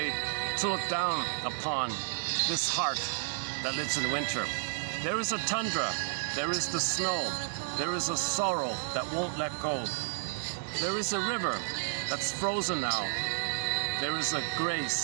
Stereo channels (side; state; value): left; silent; digital silence